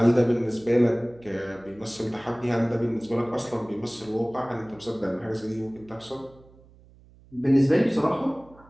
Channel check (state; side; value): noise; right; hum, 26 dB below the sound